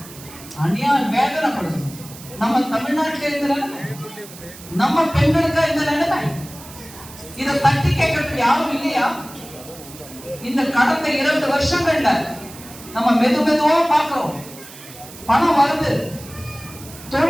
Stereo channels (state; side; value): noise; right; hiss, 17 dB below the sound